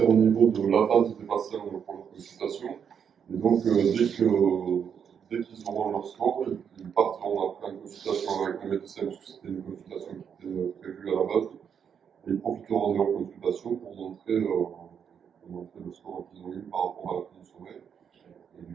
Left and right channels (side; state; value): left; quieter; 7.5 dB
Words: au niveau de l'attente des patients pour leur consultation. Et donc, dès qu'ils auront leur score, ils partiront après en consultation avec le médecin, parce que c'était une consultation qui était prévue à la base. Et ils profiteront de leur consultation pour montrer le score qu'ils ont eu par rapport à la fin du sommeil. Et